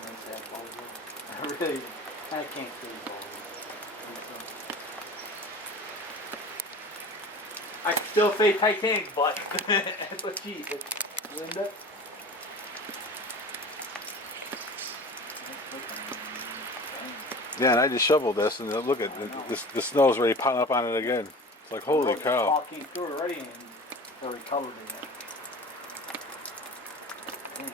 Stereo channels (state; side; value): normal; both; correlation 0.38